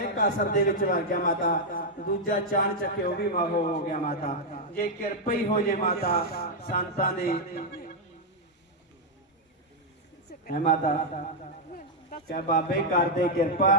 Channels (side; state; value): both; normal; correlation -0.02